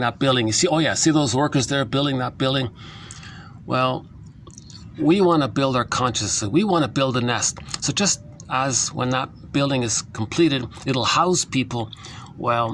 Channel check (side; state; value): both; identical; correlation 1.00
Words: building. You see, oh yeah, see those workers there building that building? Well, we want to build our consciousness. We want to build a nest. So just as when that building is completed, it'll house people.